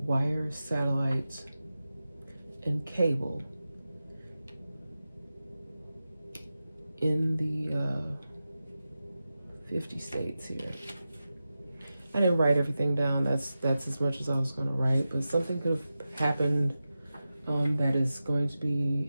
wire, satellites, and cable in the 50 states here. I didn't write everything down. That's as much as I was going to write, but something could have happened that is going to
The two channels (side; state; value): both; inverted; correlation -0.93